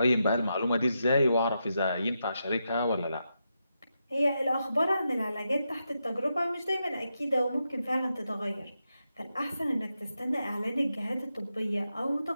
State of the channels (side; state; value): both; inverted; correlation -0.86